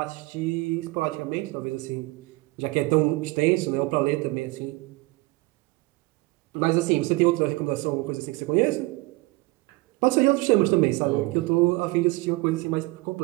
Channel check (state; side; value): quieter; left; 22.6 dB